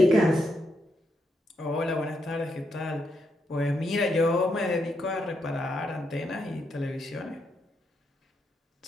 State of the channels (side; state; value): both; normal; correlation 0.80